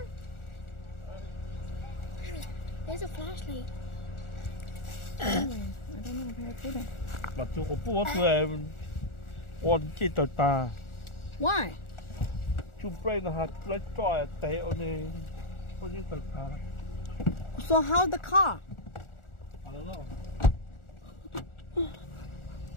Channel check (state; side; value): late; right; 1.4 ms